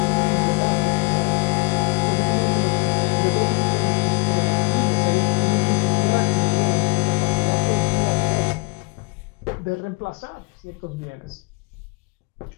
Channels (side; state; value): right; quieter; 29.1 dB